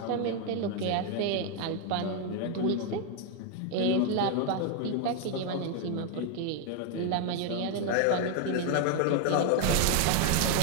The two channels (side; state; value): both; different; correlation 0.00